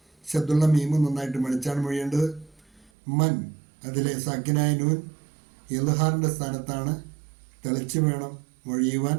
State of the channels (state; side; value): drops out; left; at 2.9 s